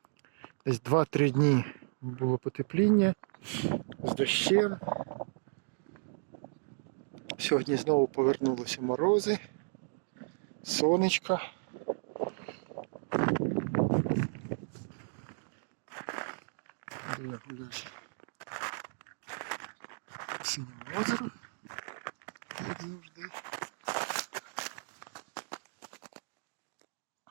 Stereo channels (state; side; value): silent; left; digital silence